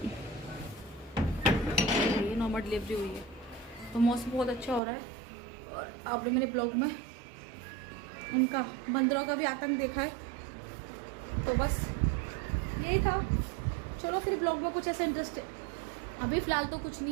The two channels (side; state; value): left; drops out; at 4.8 s